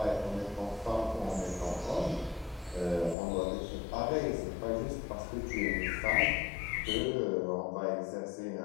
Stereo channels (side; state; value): right; drops out; at 3.2 s